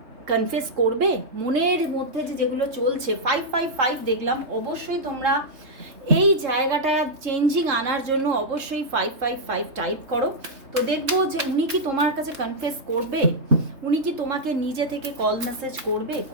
কনফেস করবে? মনের মধ্যে যে যেগুলো চলছে, 555 দেখলাম, অবশ্যই তোমরা এই জায়গাটা চেঞ্জিং আনার জন্য অবশ্যই 555 টাইপ করো। তো দেখবো যে উনি কি তোমার কাছে কনফেস করবে, উনি কি তোমাকে নিজে থেকে কল মেসেজ করবে,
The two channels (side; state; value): left; late; 3.3 ms